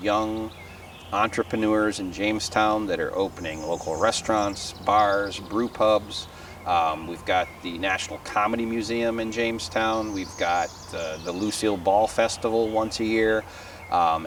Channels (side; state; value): both; identical; correlation 1.00